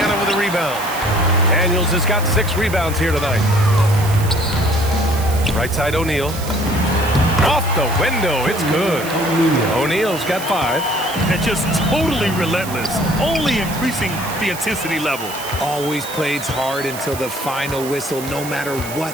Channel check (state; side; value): noise; right; hiss, 12 dB below the sound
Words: with a rebound. Daniels has got 6 rebounds here tonight. Right side O'Neal. Off the window, it's good. O'Neal's got 5. And just totally relentless, only increasing the intensity level. Always plays hard until the final whistle, no matter what